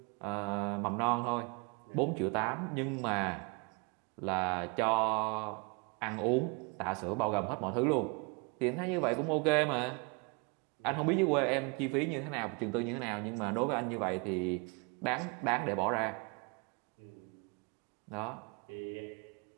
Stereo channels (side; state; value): left; quieter; 32.0 dB